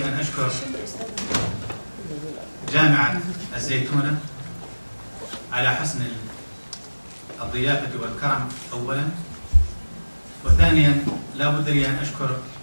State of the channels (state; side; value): inverted; both; correlation -1.00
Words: أن أشكر جامعة الزيتونة على حسن الضيافة والكرم أولا، وثانيا لا بد لي أن أشكر